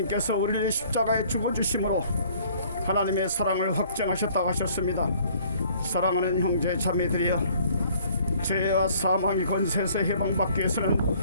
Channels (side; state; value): both; inverted; correlation -0.57